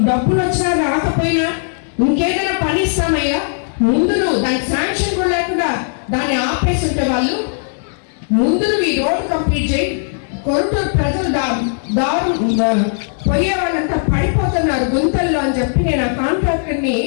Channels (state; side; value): silent; right; digital silence